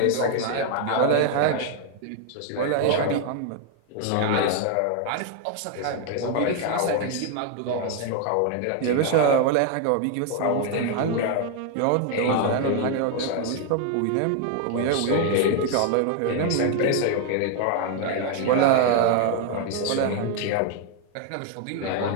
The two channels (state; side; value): different; both; correlation 0.00